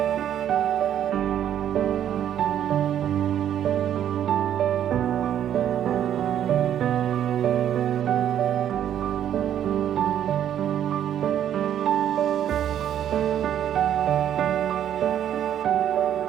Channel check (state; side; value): quieter; left; 10.3 dB